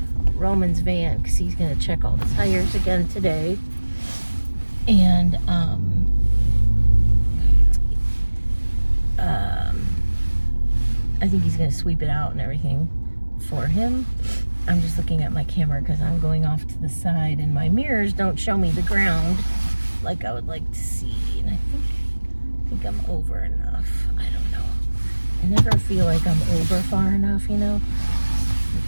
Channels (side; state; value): both; inverted; correlation -1.00